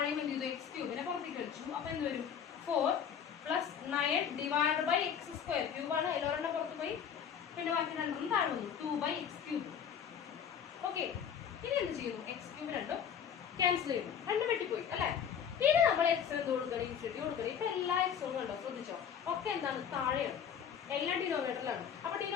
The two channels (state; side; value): quieter; right; 8.0 dB